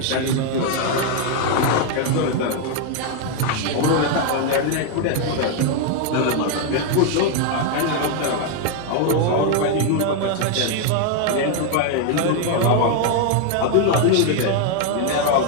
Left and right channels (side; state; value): both; different; correlation 0.01